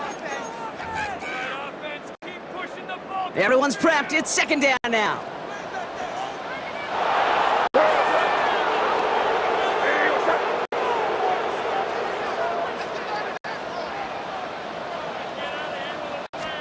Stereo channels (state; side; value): identical; both; correlation 1.00